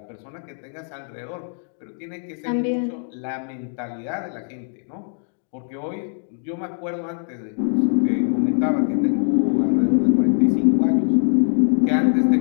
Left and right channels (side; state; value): right; silent; 64 dB below the other